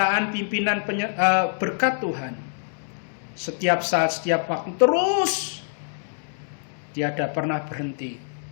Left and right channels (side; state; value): right; silent; 62 dB below the other